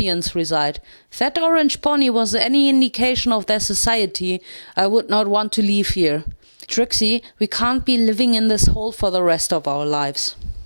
reside. If that orange pony was any indication of their society, I would not want to leave here. Trixie, we can't be living in this hole for the rest of our lives.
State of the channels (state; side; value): inverted; both; correlation -1.00